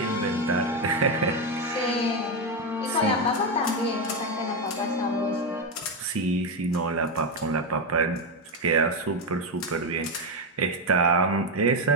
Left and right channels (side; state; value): both; normal; correlation 0.08